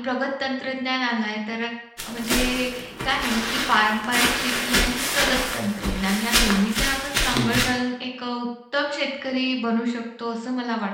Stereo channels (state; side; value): identical; both; correlation 1.00